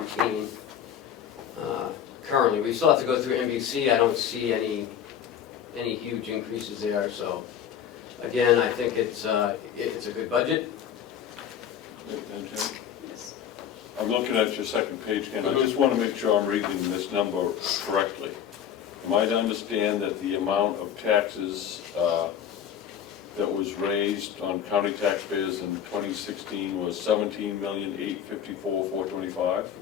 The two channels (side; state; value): right; quieter; 8.9 dB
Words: Currently, we still have to go through NBC. I don't see any huge increases there. So, again, I think it's a good budget. and Jim? Yes. I'm looking at your second page, Ken, I just wanna make sure I'm reading this number correctly. Am I to understand that the amount of taxes, that was raised on county taxpayers in 2016 was 17,854,425?